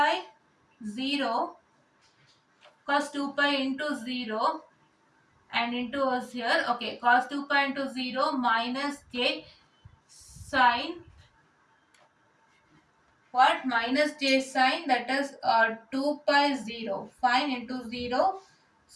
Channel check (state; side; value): identical; both; correlation 1.00